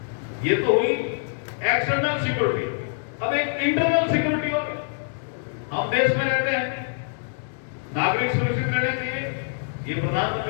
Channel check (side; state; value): right; silent; 62 dB below the other